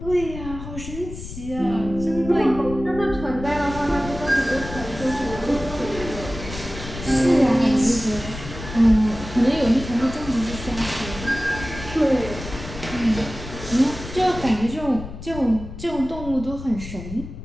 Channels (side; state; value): left; noise; rumble, 11 dB below the sound